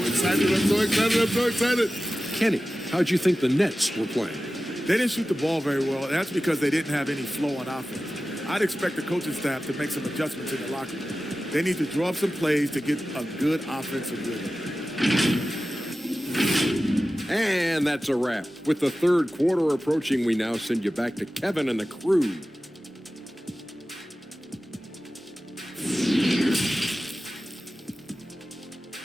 excited, I'm so excited. Kenny, how'd you think the Nets were playing? They didn't shoot the ball very well, and that's because they didn't have any flow on offense. I'd expect the coaching staff to make some adjustments in the locker room. They need to draw up some plays to get a good offensive rhythm. And that's a wrap. With the third quarter approaching, we now send you back to Kevin and the crew.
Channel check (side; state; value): both; normal; correlation 0.95